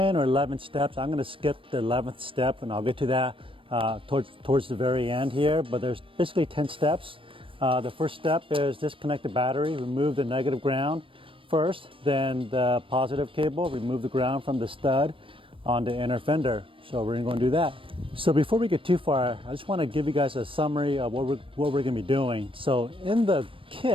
or 11 steps. I'm going to skip the 11th step, and I'll get to that towards the very end here, but there's basically 10 steps. The first step is disconnect the battery, remove the negative ground first, then the positive cable, remove the ground from the stud on the inner fender. So we're going to do that. So before we get too far, I just want to give you guys a summary of what we're going to be doing. So in the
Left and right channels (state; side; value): late; left; 0.25 ms